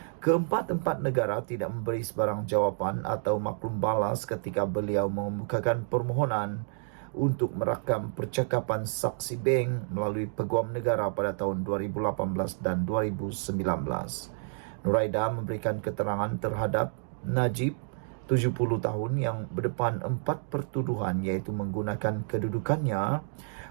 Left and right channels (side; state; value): left; silent; digital silence